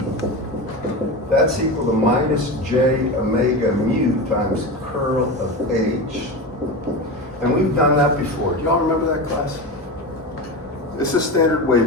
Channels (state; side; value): normal; both; correlation 0.23